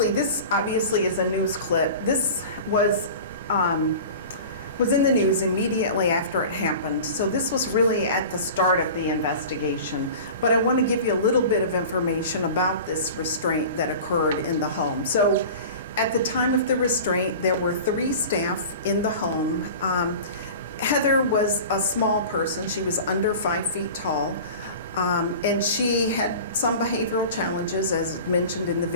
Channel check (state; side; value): inverted; both; correlation -0.37